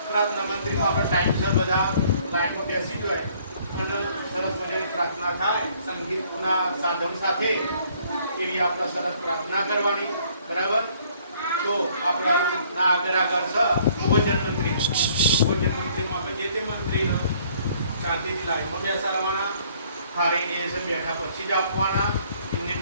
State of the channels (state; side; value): inverted; both; correlation -0.61